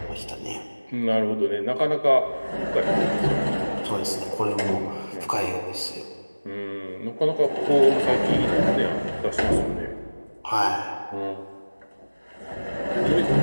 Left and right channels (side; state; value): both; inverted; correlation -1.00